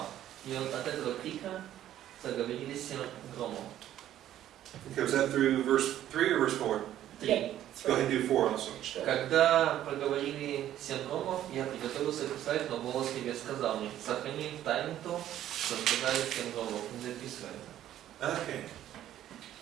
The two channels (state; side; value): quieter; left; 12.1 dB